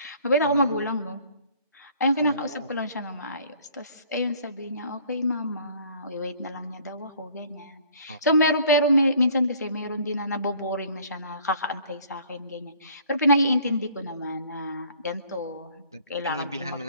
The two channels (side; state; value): both; inverted; correlation -0.55